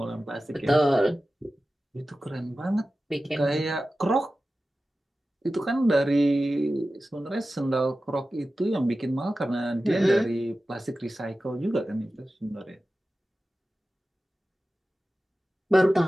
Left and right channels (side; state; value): both; normal; correlation 0.94